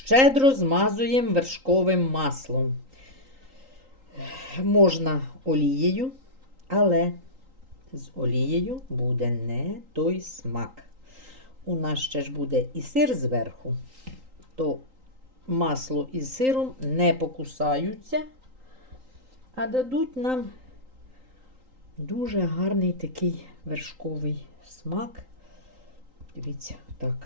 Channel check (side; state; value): left; late; 3.8 ms